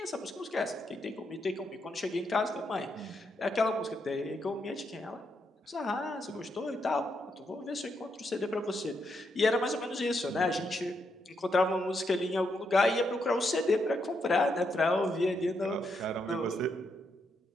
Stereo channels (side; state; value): both; normal; correlation 0.80